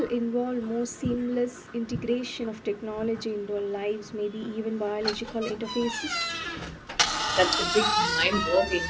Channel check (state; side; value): identical; both; correlation 1.00